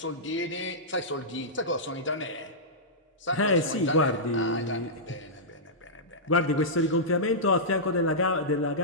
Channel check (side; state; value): both; normal; correlation -0.14